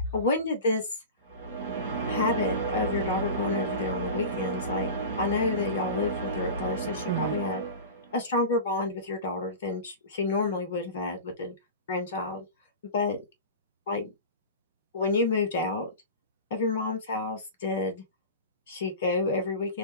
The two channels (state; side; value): inverted; both; correlation -0.31